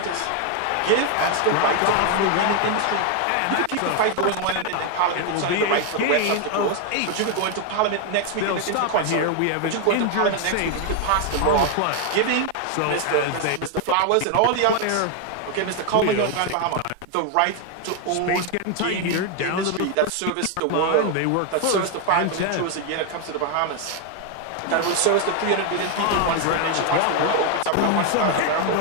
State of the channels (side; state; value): both; different; correlation 0.01